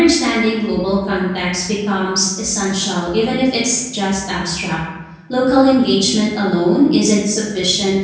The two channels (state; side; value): identical; both; correlation 1.00